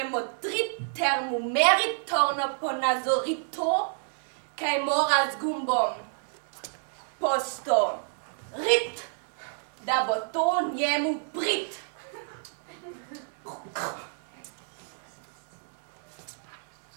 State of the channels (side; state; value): left; silent; digital silence